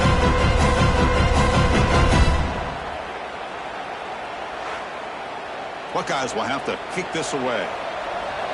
Buckeyes will have to kick this away.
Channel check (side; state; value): both; identical; correlation 1.00